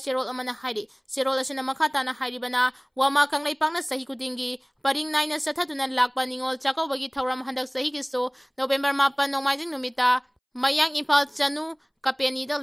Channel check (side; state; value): both; identical; correlation 1.00